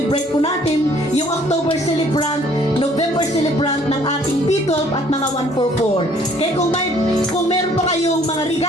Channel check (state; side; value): normal; both; correlation 0.59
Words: po natin yung October celebrant, November celebrant ng ating P12 at mga 144. Kaya kung meron pa kayong mga